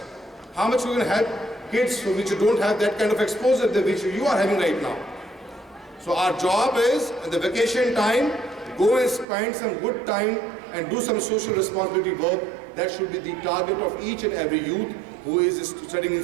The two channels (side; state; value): left; drops out; at 9.2 s